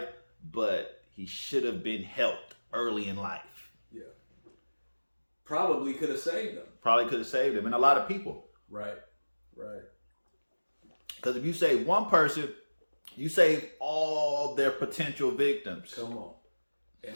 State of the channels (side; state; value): both; inverted; correlation -1.00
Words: but he should have been helped early in life. Yeah. Probably could have saved them. Probably could have saved him, and a lot of people. Right. Right. Because if you save one person, you save all their potential victims. Come on. And